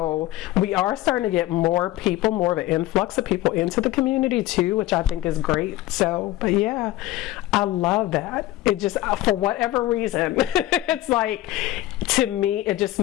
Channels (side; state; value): right; quieter; 15.9 dB